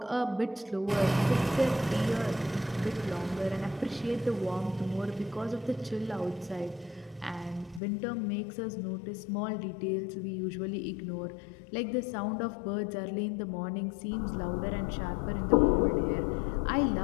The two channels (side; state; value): right; drops out; at 7.8 s